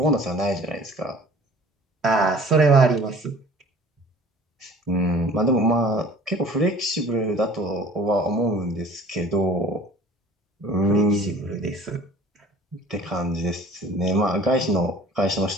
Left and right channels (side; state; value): both; normal; correlation 0.48